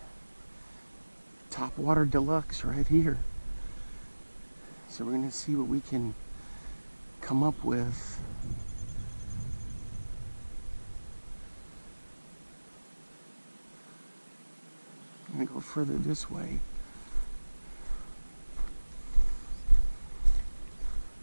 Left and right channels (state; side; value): inverted; both; correlation -1.00